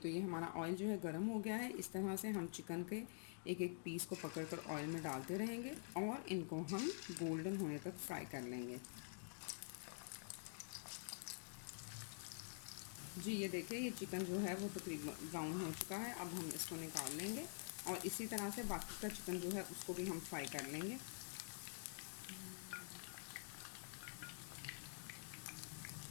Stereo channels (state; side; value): silent; right; digital silence